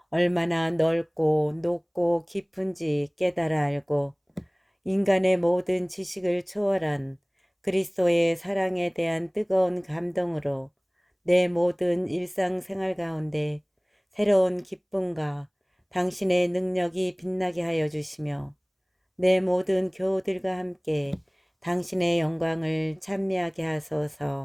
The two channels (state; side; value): identical; both; correlation 1.00